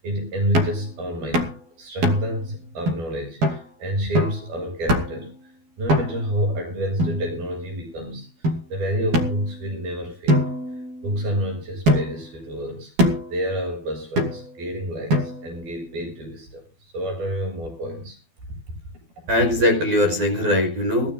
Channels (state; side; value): late; left; 12 ms